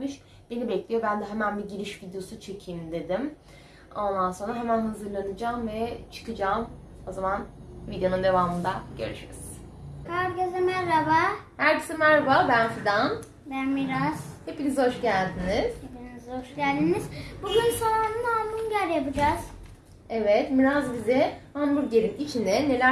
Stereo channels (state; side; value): identical; both; correlation 1.00